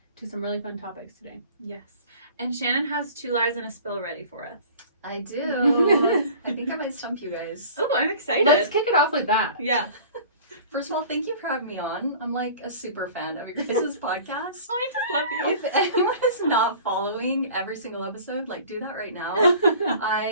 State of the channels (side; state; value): both; inverted; correlation -0.44